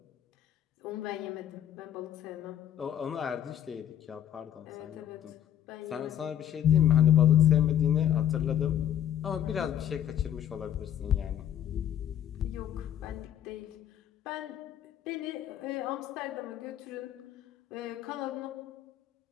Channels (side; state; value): right; quieter; 10.5 dB